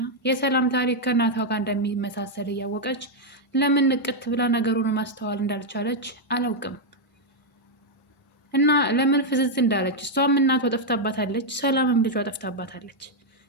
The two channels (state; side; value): normal; both; correlation -0.01